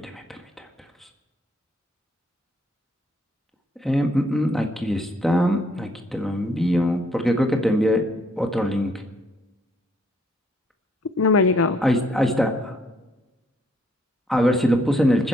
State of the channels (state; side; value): normal; both; correlation 0.68